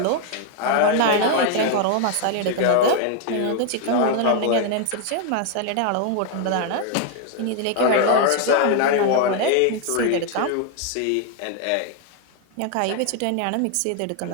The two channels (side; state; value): both; different; correlation 0.00